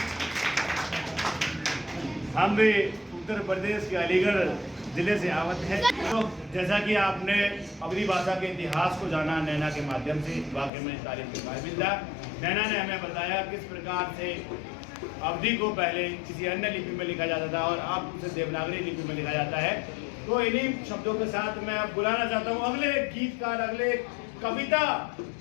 हम भी उत्तर प्रदेश के अलीगढ़ जिले से आवत है। तो जैसा कि आपने अवधी भाषा के इतिहास को जाना नैना के माध्यम से, वाकई में तारीफ के काबिल था। नैना ने हमें बताया किस प्रकार से अवधी को पहले किसी अन्य लिपि में लिखा जाता था और अब उसे देवनागरी लिपि में लिखा जाता है। तो इन्हीं शब्दों के साथ मैं अब बुलाना चाहता हूँ अगले गीतकार, अगले कविता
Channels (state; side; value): drops out; right; at 10.7 s